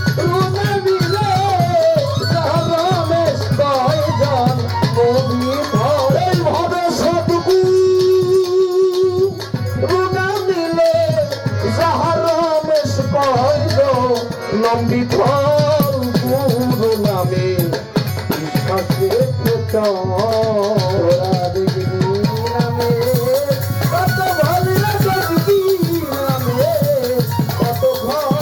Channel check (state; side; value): identical; both; correlation 1.00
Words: পরম বিফল গুরু নামে বিশ্বাসে তোরা দেখবি নামে কত ভালো দেখবি নামে কত